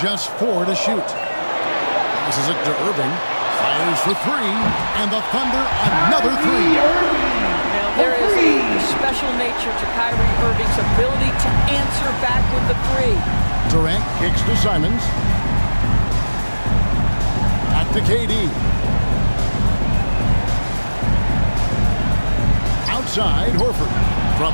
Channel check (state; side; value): inverted; both; correlation -1.00